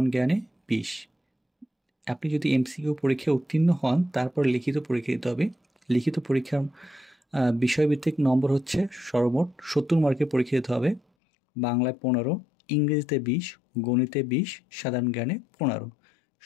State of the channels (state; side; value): drops out; right; at 11.0 s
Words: জ্ঞানে 20। আপনি যদি এমসিকিউ পরীক্ষায় উত্তীর্ণ হন তারপর লিখিত পরীক্ষা দিতে হবে। লিখিত পরীক্ষার বিষয়ভিত্তিক নম্বর হচ্ছে সর্বমোট 70 মার্কের পরীক্ষা দিতে হবে। বাংলায় 15, ইংরেজিতে 20, গণিতে 20, সাধারণ জ্ঞানে 15।